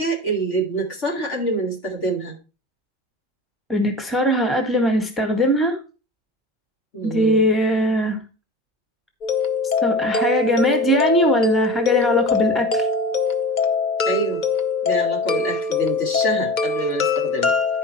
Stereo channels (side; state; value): both; normal; correlation 0.33